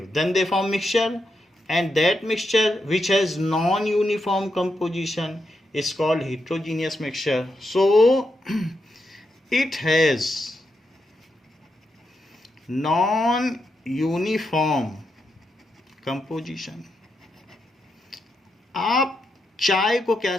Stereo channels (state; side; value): normal; both; correlation 0.84